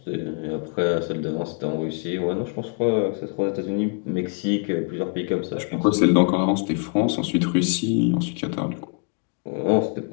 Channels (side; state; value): right; quieter; 37.6 dB